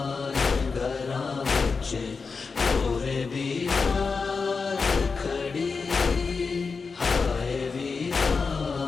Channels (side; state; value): right; quieter; 4.8 dB